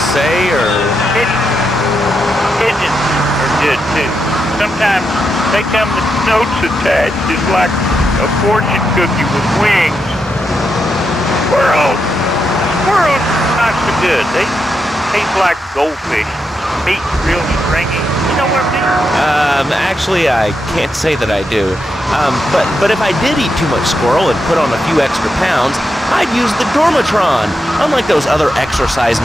or? Pigeons are good, too. Sometimes they come with notes attached, just like a fortune cookie with wings. Squirrels not so good. They taste like goldfish. Meat's real stringy. You know what I mean? Actually, I can't say that I do. But if I did eat too much squirrel and put on a few extra pounds, I'd use the Dormatron. Unlike those other exercise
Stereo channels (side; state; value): both; normal; correlation 0.84